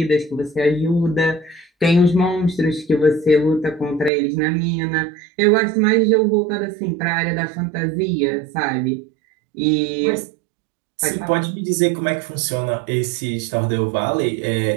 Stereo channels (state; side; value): drops out; left; at 4.1 s